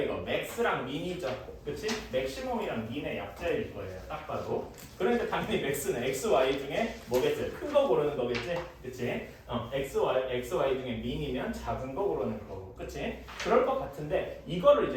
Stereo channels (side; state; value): both; identical; correlation 1.00